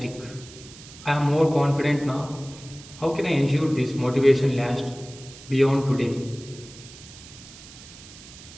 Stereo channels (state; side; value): noise; right; hiss, 18 dB below the sound